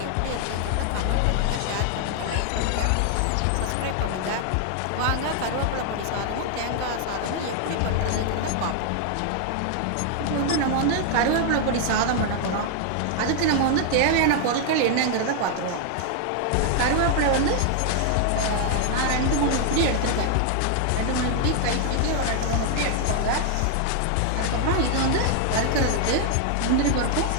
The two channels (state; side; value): different; both; correlation 0.00